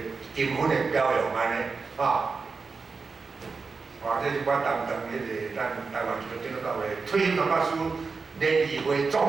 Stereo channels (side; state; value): left; quieter; 4.6 dB